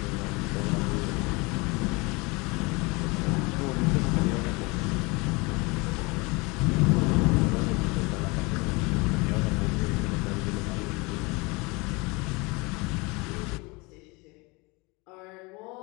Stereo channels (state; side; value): quieter; right; 26.5 dB